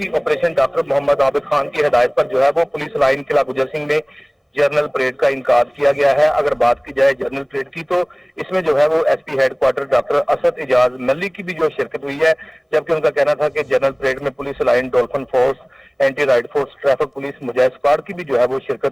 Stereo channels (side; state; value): both; identical; correlation 1.00